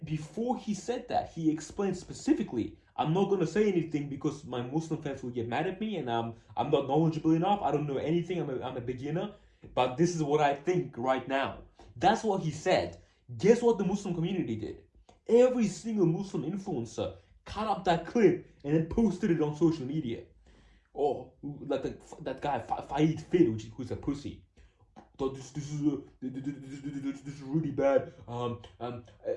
before he said that, he explained specifically, I'm not going to say anything because my Muslim friends will get mad at me and I'm not knowledgeable enough. I don't know anything. I'm a beginner. But this is what I think right now. That's what he said. Guess what the Muslim community did? Every single Muslim influencer cut up that clip and then posted it on social media. Oh, like that guy, Faid Fid, who's a pussy. This is really bad. I know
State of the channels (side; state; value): both; identical; correlation 1.00